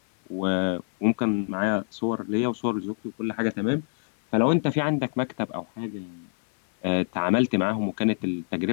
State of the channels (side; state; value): right; silent; 61 dB below the other